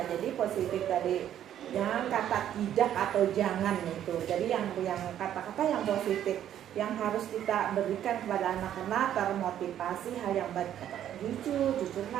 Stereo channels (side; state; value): left; quieter; 10.8 dB